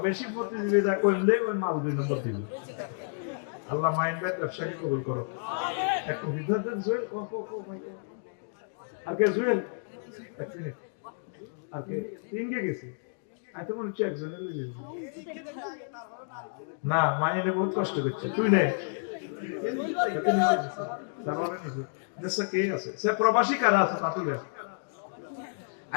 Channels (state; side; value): silent; right; digital silence